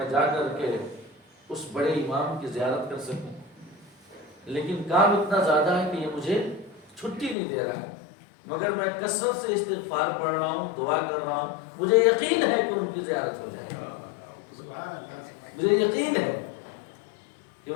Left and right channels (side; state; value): right; drops out; at 7.4 s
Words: جا کر کے اس بڑے امام کی زیارت کر سکوں، لیکن کام اتنا زیادہ ہے کہ یہ مجھے چھٹی نہیں دے رہا ہے، مگر میں کثرت سے استغفار پڑھ رہا ہوں، دعا کر رہا ہوں، مجھے یقین ہے کہ ان کی زیارت ہو جائے گی، مجھے یقین ہے کہ